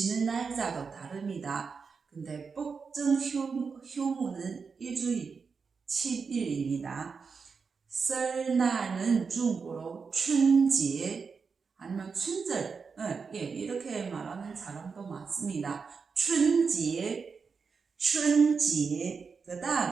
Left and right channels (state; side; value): quieter; left; 5.3 dB